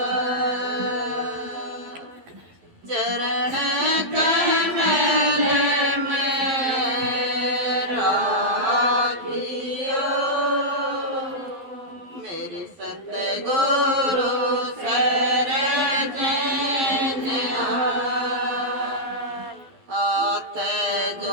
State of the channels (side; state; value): left; late; 12 ms